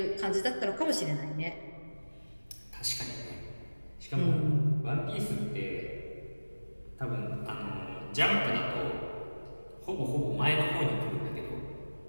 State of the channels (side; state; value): both; inverted; correlation -1.00